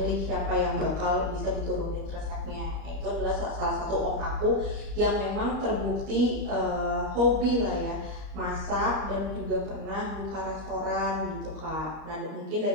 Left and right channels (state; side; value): late; left; 38 ms